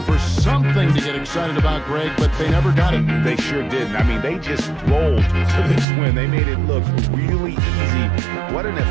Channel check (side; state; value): left; drops out; at 5.9 s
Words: for something to get excited about, Greg, but they never got it. They sure didn't. I mean, they just rolled to this win. They made it look really easy. What an